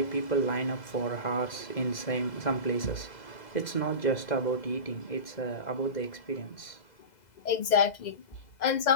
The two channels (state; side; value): late; right; 2.0 ms